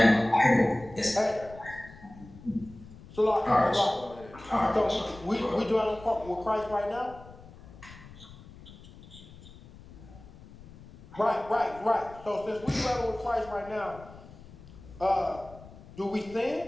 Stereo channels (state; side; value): noise; left; rumble, 19 dB below the sound